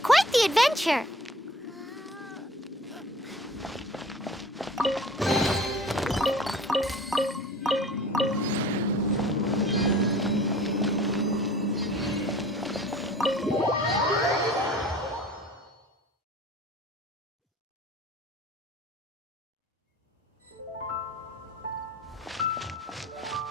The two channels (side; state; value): both; normal; correlation 0.46